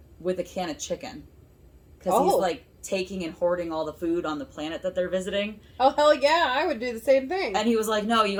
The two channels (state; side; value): identical; both; correlation 1.00